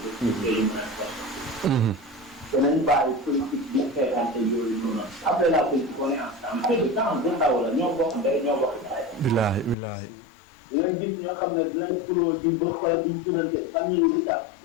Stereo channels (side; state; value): right; drops out; at 9.8 s